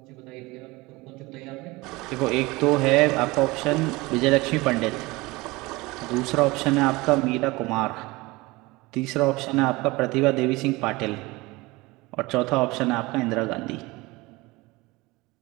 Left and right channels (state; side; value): quieter; left; 22.3 dB